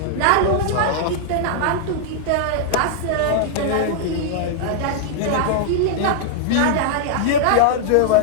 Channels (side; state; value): both; different; correlation -0.01